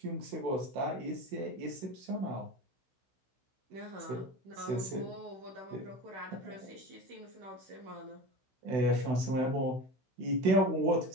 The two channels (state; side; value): late; left; 16 ms